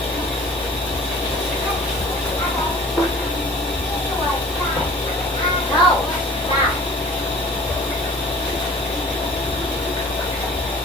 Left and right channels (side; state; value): both; normal; correlation 0.47